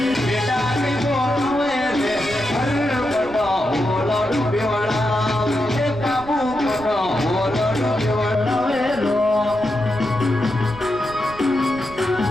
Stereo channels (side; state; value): right; noise; rumble, 17 dB below the sound